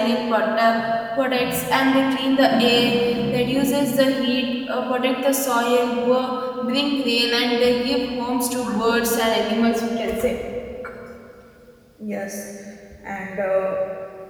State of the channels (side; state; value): both; identical; correlation 1.00